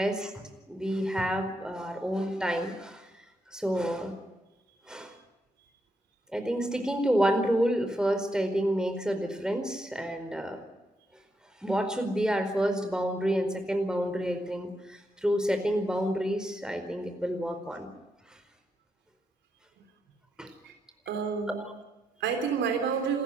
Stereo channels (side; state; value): both; normal; correlation 0.80